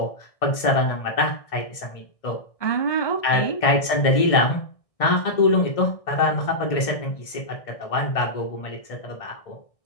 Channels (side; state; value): right; late; 1.6 ms